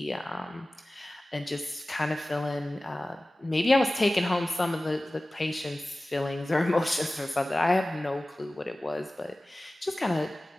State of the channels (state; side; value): normal; both; correlation 0.97